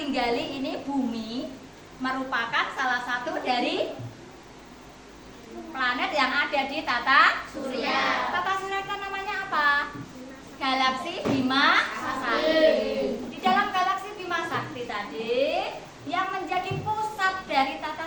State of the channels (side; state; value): both; identical; correlation 1.00